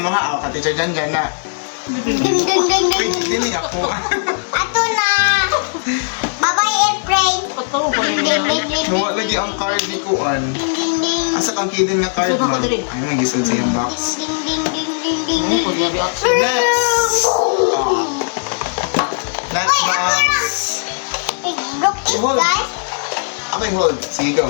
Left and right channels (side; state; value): right; silent; digital silence